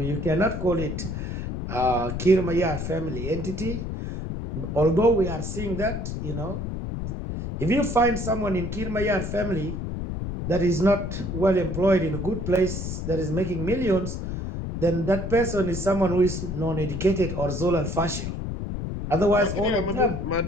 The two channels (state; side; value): noise; left; rumble, 4 dB below the sound